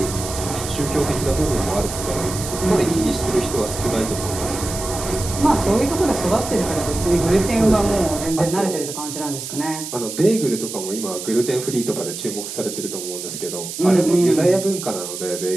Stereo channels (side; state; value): right; noise; hiss, 8 dB below the sound